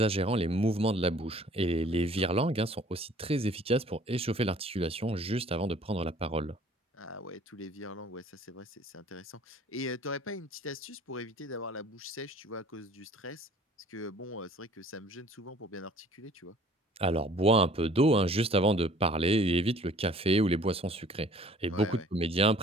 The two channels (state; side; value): normal; both; correlation 0.53